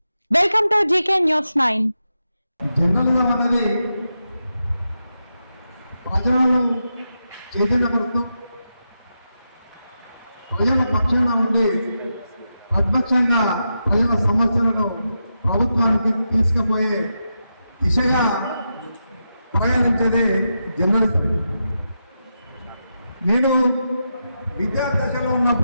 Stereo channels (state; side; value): inverted; both; correlation -0.87